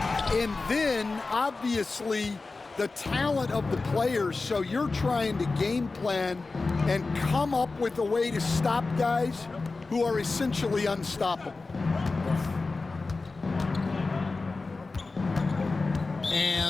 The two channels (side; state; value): right; quieter; 3.8 dB